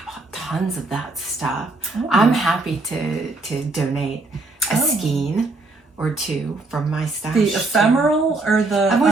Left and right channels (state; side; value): quieter; left; 3.3 dB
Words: bought tons of that stuff. I'm happy to donate a skein or two from my stash. The ephemeral or the...